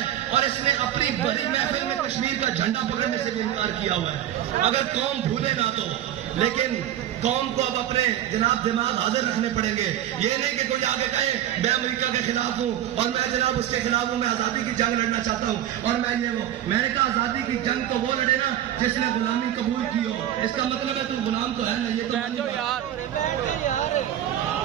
اور اس نے اپنی بڑی محفل میں کشمیر کا جھنڈا پکڑنے سے بھی انکار کیا ہوا ہے. اگر قوم بھولے نہ تو، لیکن قوم کو اب اپنے جناب دماغ حاضر رکھنے پڑیں گے. یہ نہیں کہ کوئی آگے کہے میں امریکہ کے خلاف ہوں اور میں جناب اس کے خلاف ہوں، میں آزادی کی جنگ لڑنا چاہتا ہوں اور میں یہ وہ. میں نے کہا آزادی کی جنگ تو وہ لڑے نا جس نے غلامی قبول کی ہو. اس کا مطلب ہے تو غلام تو ہے نا. یہ تو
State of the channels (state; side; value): quieter; left; 11.7 dB